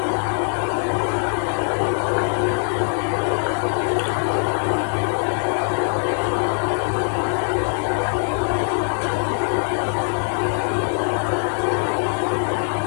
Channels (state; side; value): silent; right; 64 dB below the other